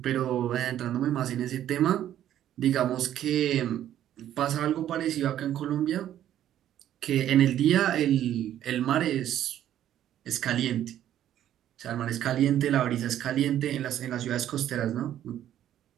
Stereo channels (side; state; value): left; quieter; 11.5 dB